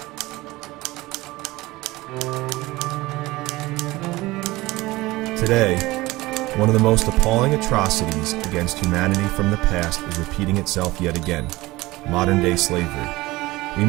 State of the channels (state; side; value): quieter; left; 19.8 dB